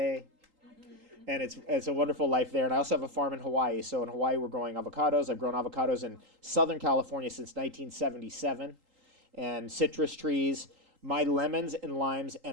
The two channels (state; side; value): late; left; 3.8 ms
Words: And it's a wonderful life there. And I also have a farm in Hawaii. So in Hawaii, we're growing avocados. I've grown avocados in Southern California since 1977. And citrus trees. My lemons and limes